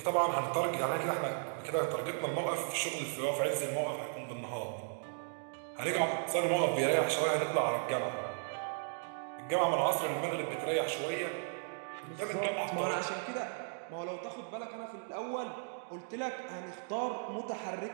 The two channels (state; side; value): silent; left; digital silence